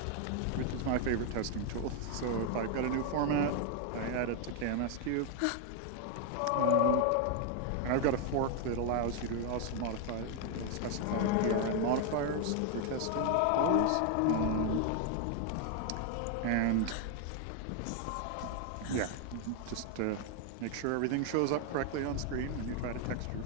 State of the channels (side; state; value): both; different; correlation 0.00